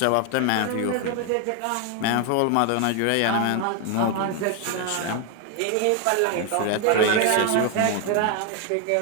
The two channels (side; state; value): both; different; correlation 0.01